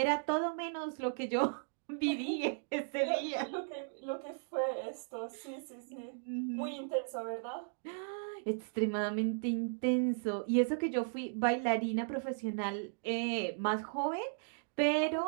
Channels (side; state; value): left; silent; digital silence